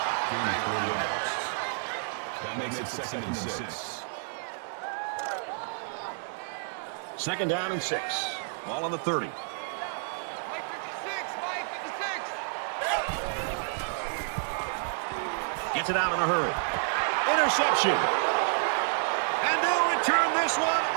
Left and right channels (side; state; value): left; silent; digital silence